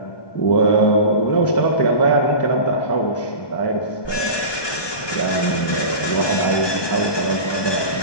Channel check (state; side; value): late; right; 1.2 ms